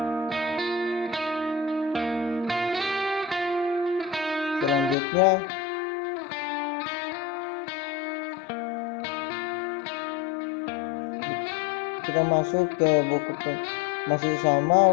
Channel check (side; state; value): right; drops out; at 5.0 s